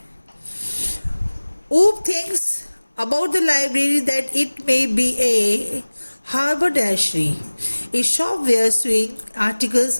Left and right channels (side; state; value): both; inverted; correlation -1.00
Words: ऊप thinks about the library that it may be a haberdashery, a shop where sewing articles